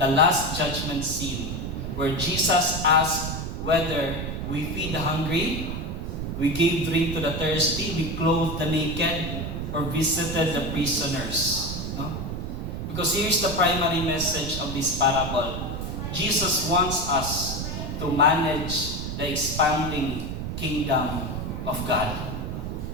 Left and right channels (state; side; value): noise; right; rumble, 4 dB below the sound